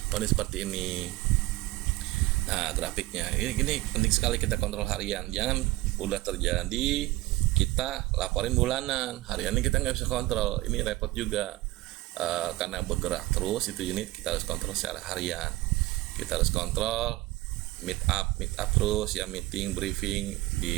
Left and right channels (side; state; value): left; quieter; 18.6 dB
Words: Ini seperti ini. Nah, grafiknya. Ini penting sekali kita kontrol harian. Jangan udah terjadi kita laporin bulanan. Harian ini kita nggak bisa kontrol. Ini repot juga. Karena bergerak terus itu unit, kita harus kontrol secara harian. Kita harus kontrol meet up terus ya, meeting briefing